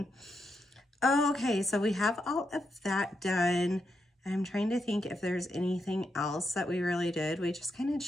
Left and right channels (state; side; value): normal; both; correlation 0.83